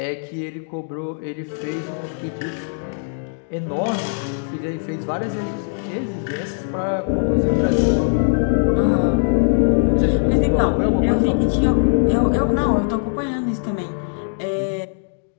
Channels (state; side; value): silent; right; digital silence